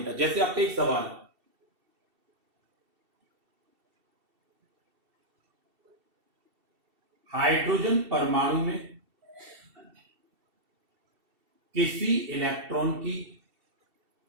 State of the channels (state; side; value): late; left; 2.7 ms